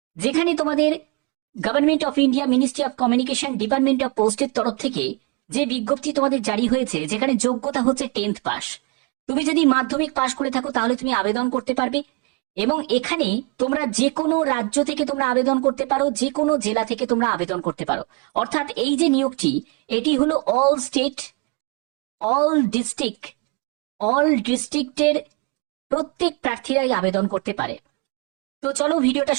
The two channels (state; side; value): quieter; left; 30.0 dB